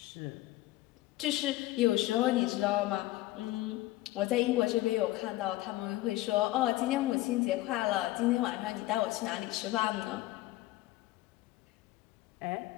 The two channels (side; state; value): right; quieter; 17.2 dB